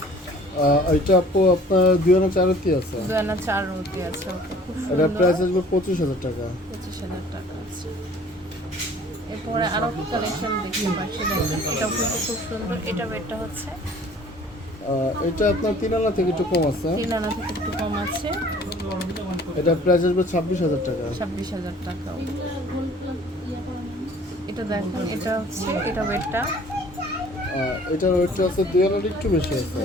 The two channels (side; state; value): both; normal; correlation 0.52